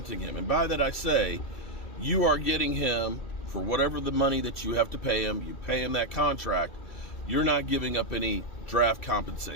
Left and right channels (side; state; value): right; late; 2.3 ms